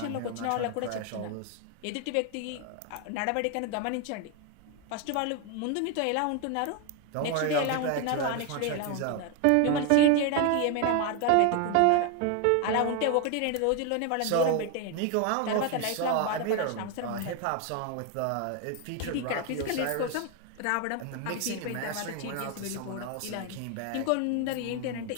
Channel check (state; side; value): different; both; correlation 0.01